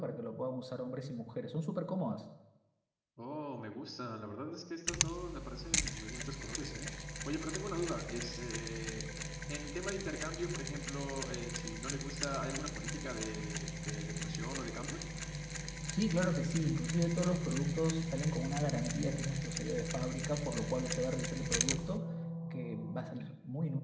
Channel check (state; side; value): identical; both; correlation 1.00